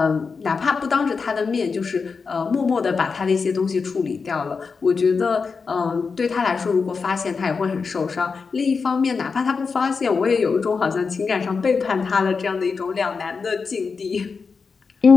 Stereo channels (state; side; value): quieter; right; 5.0 dB